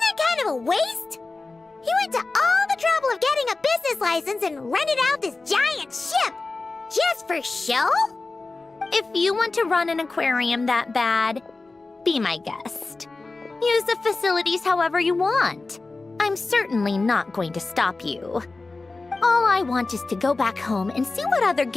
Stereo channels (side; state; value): right; quieter; 3.6 dB